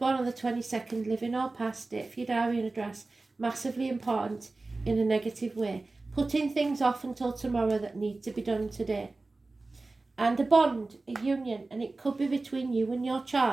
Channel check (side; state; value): left; quieter; 3.4 dB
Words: on the 22nd, living or past it, for your diary and address, massively important in a negative way. Putting things off until tomorrow that need to be done today. And a bond, a union, and it could be between you and your